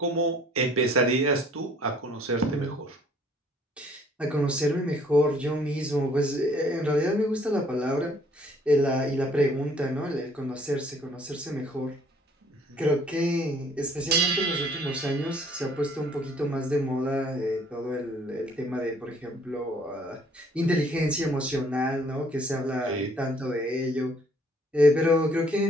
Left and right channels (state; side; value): normal; both; correlation 0.60